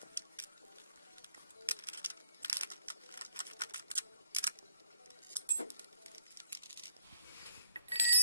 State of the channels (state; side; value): inverted; both; correlation -0.73